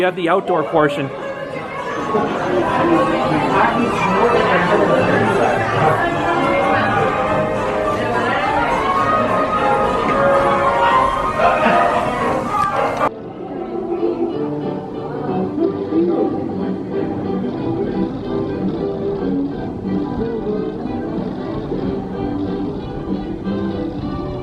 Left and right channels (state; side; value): identical; both; correlation 1.00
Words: have the outdoor portion.